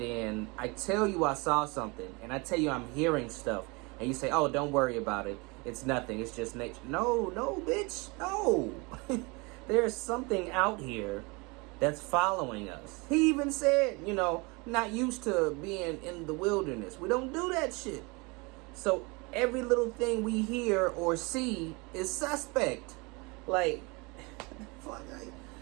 then I tell you I saw something. And I tell you I'm hearing stuff. And you say, oh, don't worry about it. It's nothing. It's just nature. No, bitch. No. There's something out here that's following us. He even said, you know, not used to being in the wilderness. We don't do that shit. So every little thing we hear or see is suspect. Like, fuck,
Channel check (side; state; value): left; quieter; 27.7 dB